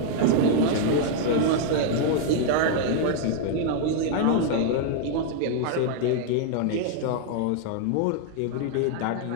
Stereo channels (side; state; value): both; different; correlation -0.01